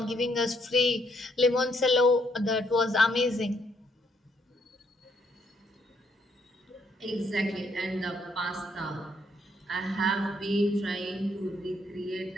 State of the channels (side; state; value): both; normal; correlation 0.72